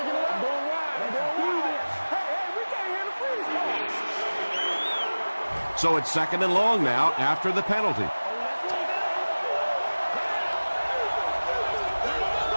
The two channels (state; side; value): inverted; both; correlation -1.00